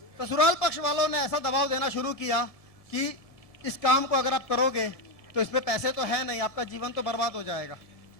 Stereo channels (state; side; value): late; right; 1.7 ms